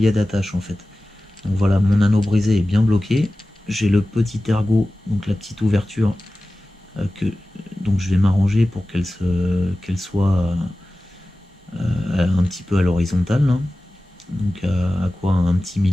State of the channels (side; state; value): both; normal; correlation 0.96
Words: d'attache en fait. Donc voilà, mon anneau brisé est bien bloqué. J'ai le petit ergot, donc la petite ouverture, donc je vais m'arranger pour qu'elle soit un petit peu à l'horizontale, hein. Donc à quoi un petit